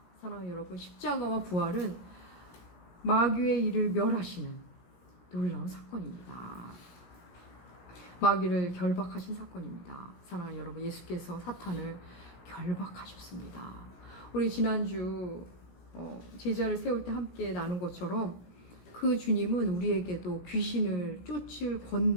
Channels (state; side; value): late; right; 17 ms